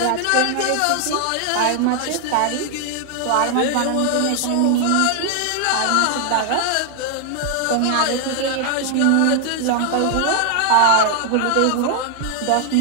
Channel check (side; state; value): both; different; correlation 0.00